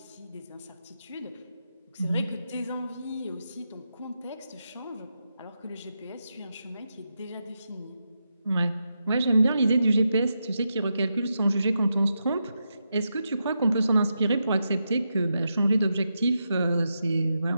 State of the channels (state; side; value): inverted; both; correlation -0.86